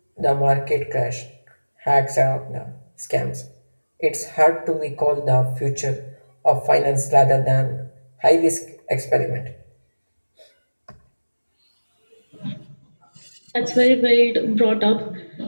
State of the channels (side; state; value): both; inverted; correlation -1.00